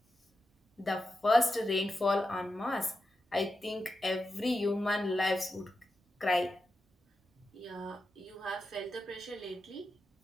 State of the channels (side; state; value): both; normal; correlation 0.89